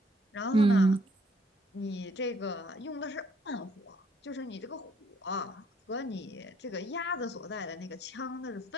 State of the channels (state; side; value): normal; both; correlation 0.65